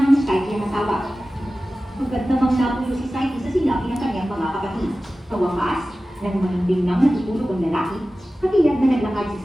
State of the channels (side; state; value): both; normal; correlation 0.95